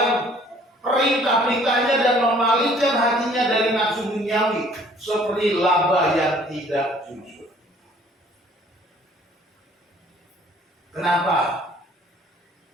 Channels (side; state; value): both; normal; correlation 0.57